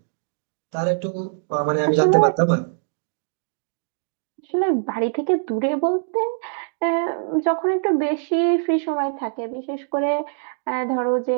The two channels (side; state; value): left; silent; digital silence